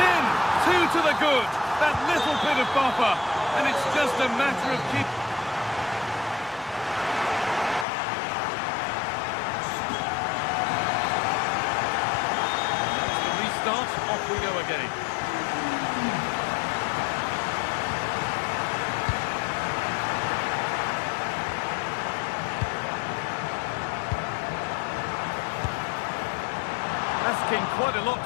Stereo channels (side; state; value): right; drops out; at 7.9 s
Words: in! 2 to the good. That little bit of buffer, and it's just a matter of keep. That's the restart. Off we go again. Asking quite a lot